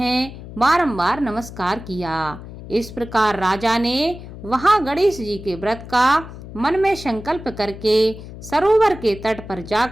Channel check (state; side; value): noise; left; hum, 14 dB below the sound